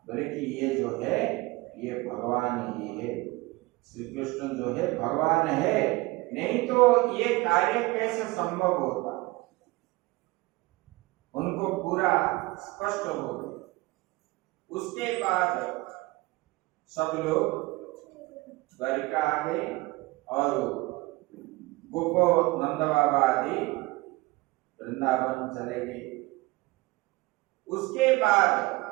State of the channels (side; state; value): left; quieter; 21.9 dB